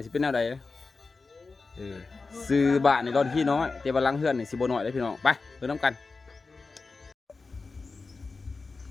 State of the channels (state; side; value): quieter; right; 4.1 dB